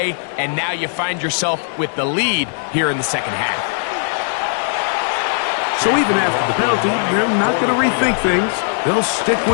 and now you find yourself with the lead here in the 2nd half. So even after the penalty, they're not going to rethink things. They'll stick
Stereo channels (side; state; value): right; silent; digital silence